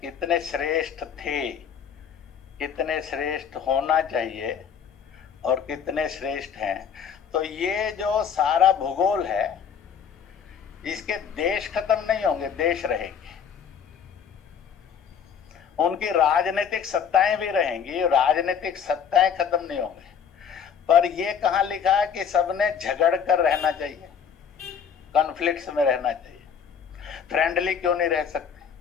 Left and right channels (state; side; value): quieter; right; 7.4 dB